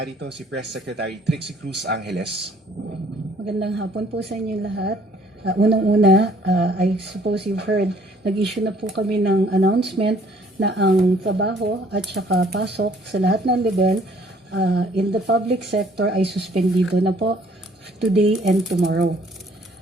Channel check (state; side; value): normal; both; correlation 0.59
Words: si Press Secretary Trixie Cruz Angeles. Magandang hapon po sa inyo lahat. Unang-una, I suppose you've heard, nag-issue na po kami ng announcement na ang trabaho at saka pasok sa lahat ng level in the public sector ay suspendido na po today and tomorrow.